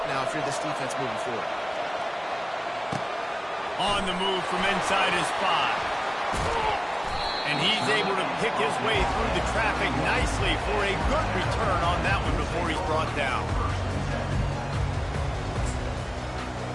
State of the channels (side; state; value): both; identical; correlation 1.00